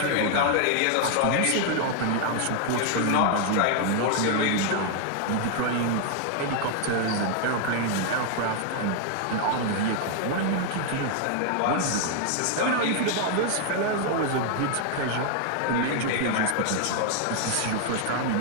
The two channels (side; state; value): both; different; correlation 0.00